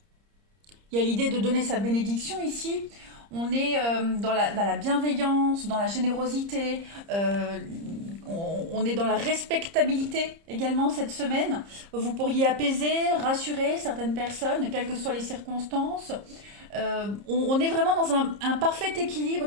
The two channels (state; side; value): late; left; 30 ms